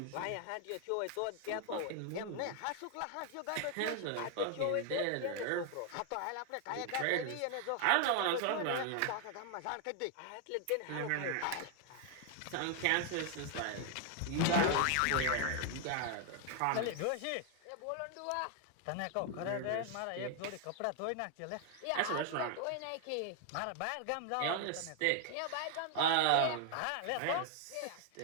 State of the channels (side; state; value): both; different; correlation 0.00